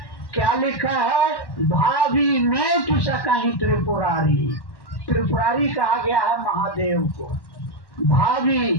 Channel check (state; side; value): late; right; 1.1 ms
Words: क्या लिखा है? भाभी में कहीं त्रिपुरारी। त्रिपुरारी कहा गया है महादेव को। भावी